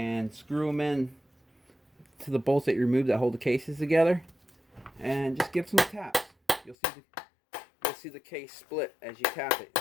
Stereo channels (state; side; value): drops out; right; at 6.8 s